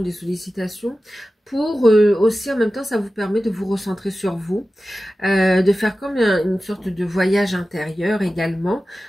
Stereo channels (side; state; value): both; normal; correlation 0.95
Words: des sollicitations. Pour aussi, en même temps, ça vous permet de vous recentrer sur vous. De faire comme une sorte de voyage intérieur également.